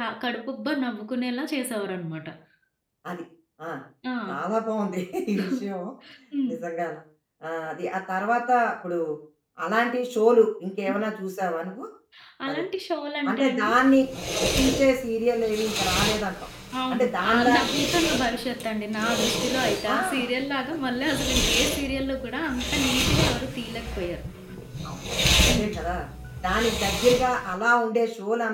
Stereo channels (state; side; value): identical; both; correlation 1.00